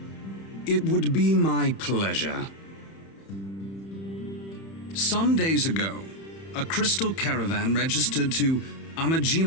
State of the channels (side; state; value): right; late; 31 ms